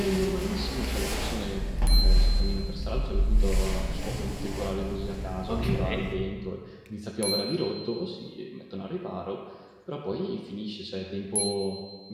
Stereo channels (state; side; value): identical; both; correlation 1.00